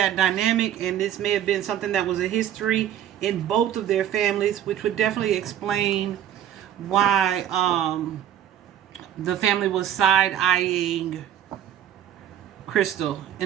dynamic, and this may have been something that was a history in both of their families, which would definitely explain why the family was side-eyeing Crystal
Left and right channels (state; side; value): quieter; left; 10.5 dB